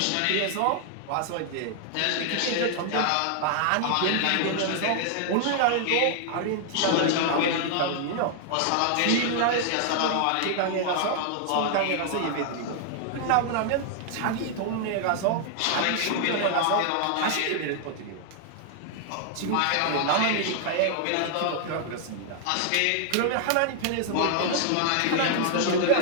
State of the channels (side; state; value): both; different; correlation 0.00